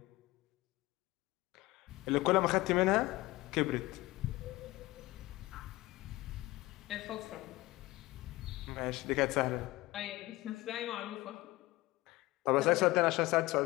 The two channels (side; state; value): right; quieter; 19.5 dB